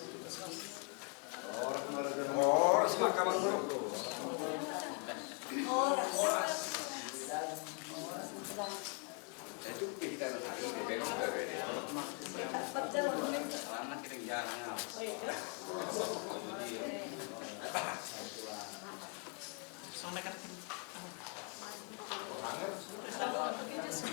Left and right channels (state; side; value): quieter; right; 36.2 dB